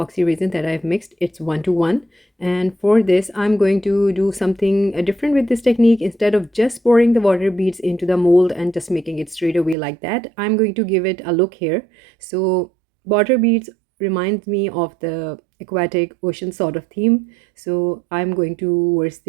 resin that I've mixed. It's 1:1. And for this I'm going to do something different with this technique. Instead of just pouring the water beads into the mold and just making it straight away like that, I'm going to give it a look here. So water beads reminds me of the aquatic ocean sort of theme, so I'm going towards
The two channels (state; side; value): drops out; left; at 9.8 s